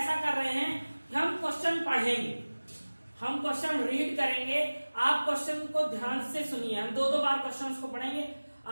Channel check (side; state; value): both; inverted; correlation -1.00